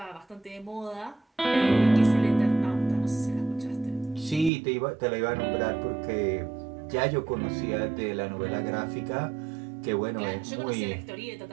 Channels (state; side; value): drops out; left; at 4.5 s